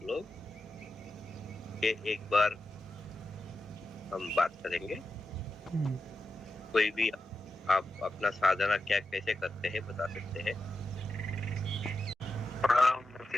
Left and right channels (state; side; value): normal; both; correlation 0.90